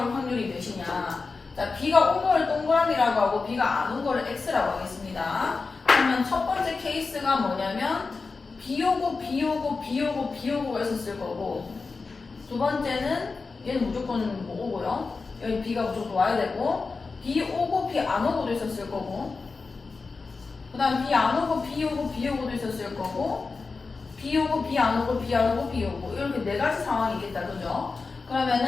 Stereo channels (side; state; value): right; quieter; 4.3 dB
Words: 확률이 몇이냐. 자, 비가 온 거를 동그라미라고 하고 비가 안 온 거를 X라고 하겠습니다. 그러면 첫 번째 케이스가 뭐냐면 비 오고 비 오고 비 오고 비 오고가 있었을 거고 두 번째는 얘는 무조건 뭐 오고요. 여기 비가 무조건 와야 되고 비 오고 비 안 오고도 있었을 거고 그 다음 비 안 오고 비 오고 비 오고도 있었을 거고 비 오고 비 안 오고 비 안 오고 비 오고 이렇게 4가지 상황이겠다, 그죠?